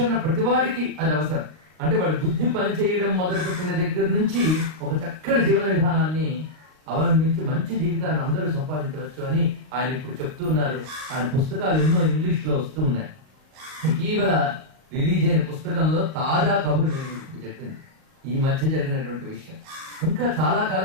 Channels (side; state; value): left; late; 38 ms